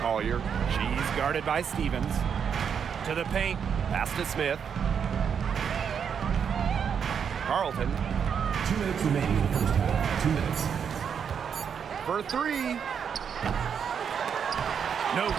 Collier. She's guarded by Stevens. To the paint. Pass to Smith. Carlton. 2 minutes remaining in the first half. 2 minutes. For 3. No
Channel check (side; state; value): left; quieter; 7.3 dB